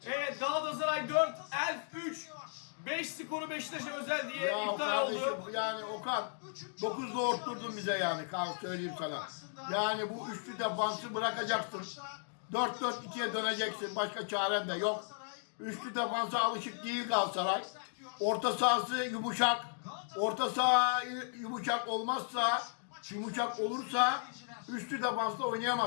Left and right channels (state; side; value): silent; right; digital silence